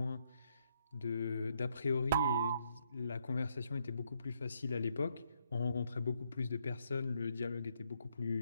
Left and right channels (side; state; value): both; inverted; correlation -0.74